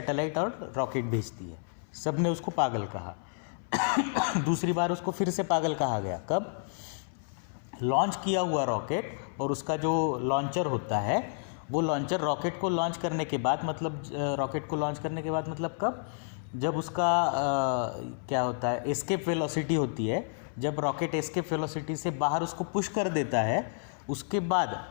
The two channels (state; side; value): silent; right; 58 dB below the other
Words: और रॉकेट भेजती है। सब ने उसको पागल कहा। दूसरी बार उसको फिर से पागल कहा गया। कब? लॉन्च किया हुआ रॉकेट और उसका जो लॉन्चर होता है, वो लॉन्चर रॉकेट को लॉन्च करने के बाद, मतलब रॉकेट को लॉन्च करने के बाद मतलब कब? जब उसका क्या होता है, एस्केप वेलोसिटी होती है। जब रॉकेट एस्केप वेलोसिटी से बाहर उसको पुश कर देता है, उसके बाद